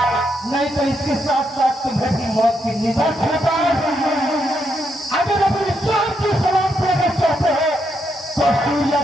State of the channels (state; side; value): normal; both; correlation 0.79